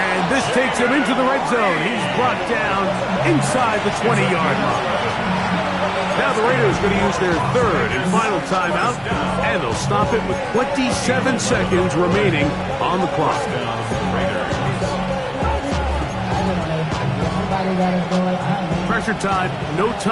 this takes him into the red zone. He's brought down inside the 20-yard line. Now the Raiders going to use their third and final timeout, and they'll stop it with 27 seconds remaining on the clock. Pressure time, no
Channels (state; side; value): identical; both; correlation 1.00